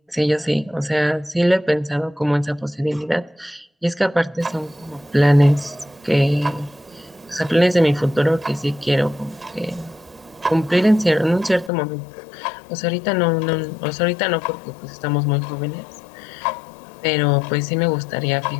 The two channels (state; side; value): drops out; right; at 11.7 s